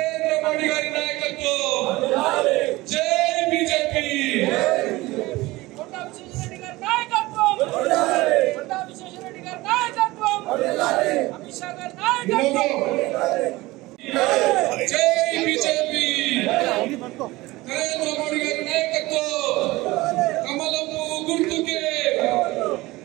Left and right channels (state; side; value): quieter; left; 19.9 dB